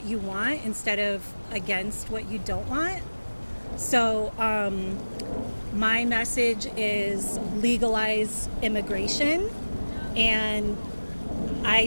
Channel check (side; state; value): both; inverted; correlation -1.00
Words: you want instead of against what you don't want. So my message is legalize immigration, and I